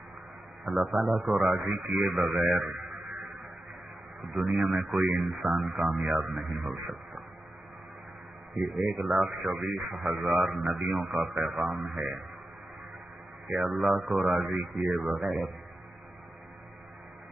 اللہ تعالیٰ کو راضی کیے بغیر دنیا میں کوئی انسان کامیاب نہیں ہو سکتا۔ یہ 1,24,000 نبیوں کا پیغام ہے کہ اللہ کو راضی کیے بغیر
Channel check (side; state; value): both; normal; correlation 0.91